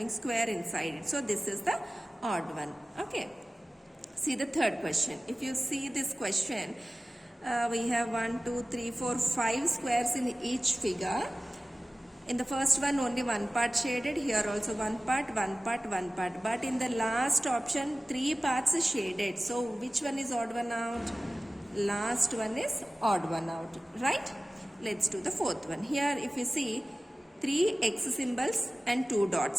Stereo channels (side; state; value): both; normal; correlation 0.97